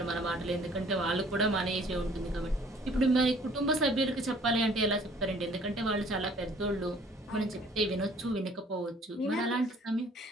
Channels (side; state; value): both; normal; correlation 0.56